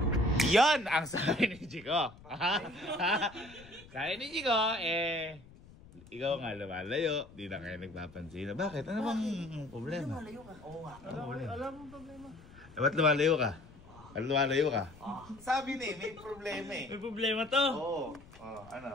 Yan ang sabi ni Jico. Sabi ni Jico, ikaw nga lumalayo, di na kayo nagpapansin. Bakit? Ano bang problema? Malayo ka. Oo nga. Alam mo problema. Ba't lumalayo ka? Ba't lumalayo ka? Sabi ni, may problema eh. May problema to. Oo.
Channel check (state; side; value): noise; left; rumble, 21 dB below the sound